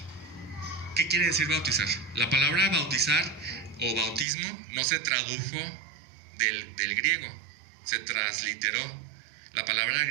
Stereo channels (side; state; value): left; drops out; at 4.2 s